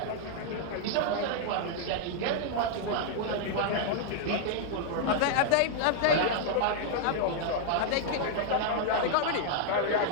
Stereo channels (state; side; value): different; both; correlation 0.00